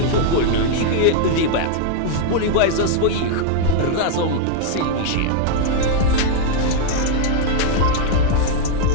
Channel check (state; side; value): different; both; correlation 0.00